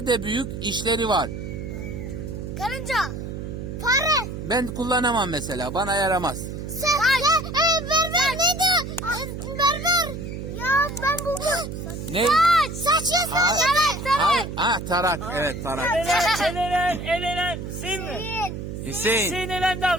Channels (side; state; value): right; noise; hum, 7 dB below the sound